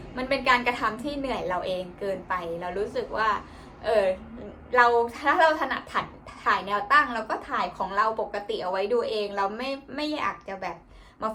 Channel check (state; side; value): identical; both; correlation 1.00